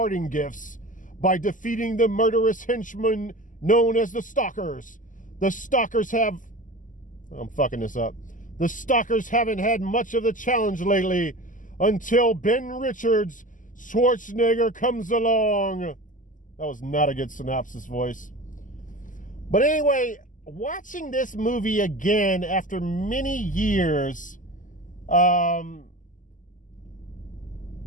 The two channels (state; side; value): late; right; 0.38 ms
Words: gifts by defeating the murderous henchmen known as the Stalkers. The Stalkers I'm fucking this up. The Stalkers haven't had much of the challenge lately until Ben Richards' Schwarzenegger comes along. That was not a good synopsis voice. But anyway, watching this movie again after many years, I